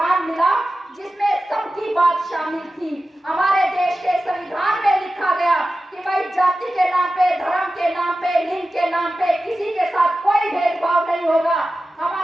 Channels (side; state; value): both; normal; correlation 0.94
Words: मिला जिसमें सबकी बात शामिल थी। हमारे देश के संविधान में लिखा गया कि भाई जाति के नाम पे, धर्म के नाम पे, लिंग के नाम पे किसी के साथ कोई भेदभाव नहीं होगा।